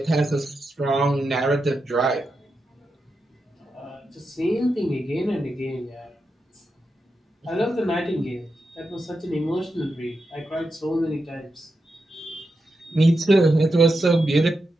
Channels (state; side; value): normal; both; correlation 0.87